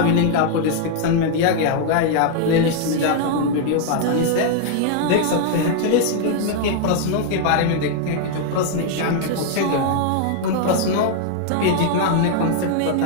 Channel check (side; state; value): both; different; correlation 0.00